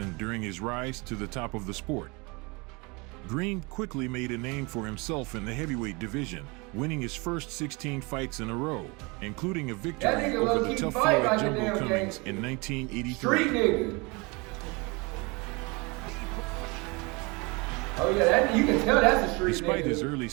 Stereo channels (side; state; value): left; quieter; 27.5 dB